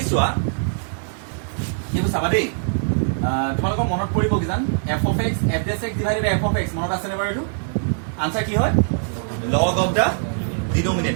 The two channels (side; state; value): left; silent; 64 dB below the other